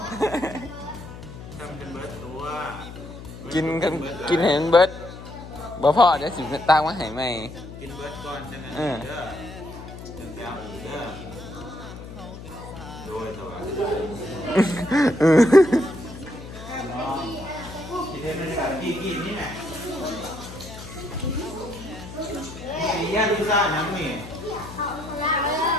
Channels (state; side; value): noise; left; hum, 13 dB below the sound